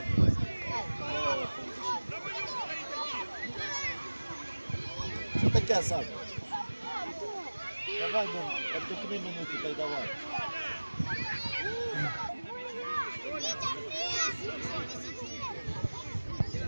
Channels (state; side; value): inverted; both; correlation -1.00